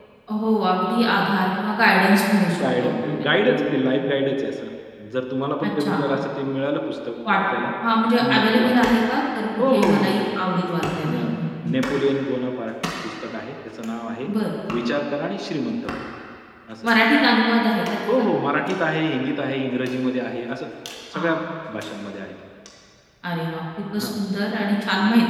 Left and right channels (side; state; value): both; identical; correlation 1.00